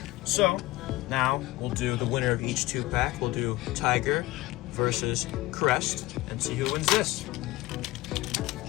So, now we'll do the winner of each 2-pack. We'll do Tiger versus Crest and see who wins this.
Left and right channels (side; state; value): right; quieter; 18.9 dB